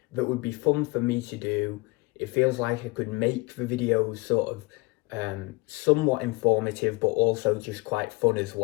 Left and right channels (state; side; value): quieter; right; 25.2 dB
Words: that would be fun for me to do. It feels like I could make the videos sort of somewhat informative, but also just quite fun as